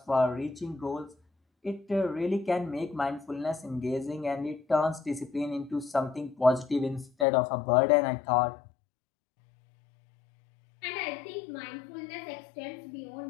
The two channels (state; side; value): drops out; right; at 7.2 s